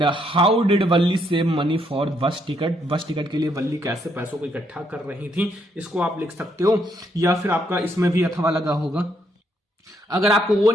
how did Valli save money for bus ticket, bus ticket के लिए वल्ली कैसे पैसों को इकट्ठा कर रही थी, इसको आप लिख सकते हो। या फिर आपका इसमें भी अथवा लगा होगा। अगर आपको वो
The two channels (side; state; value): both; normal; correlation 0.73